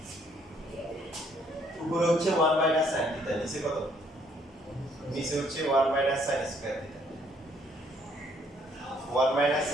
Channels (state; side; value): normal; both; correlation 0.66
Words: উপরে হচ্ছে 1 মাইনাস sin থিটা, নিচে কত নিচে হচ্ছে 1 minus sin square theta. 1 minus